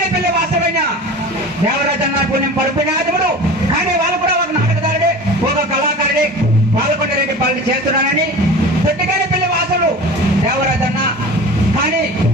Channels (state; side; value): normal; both; correlation 0.37